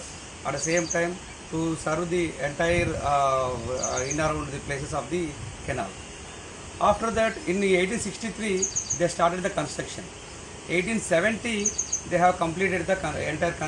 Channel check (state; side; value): identical; both; correlation 1.00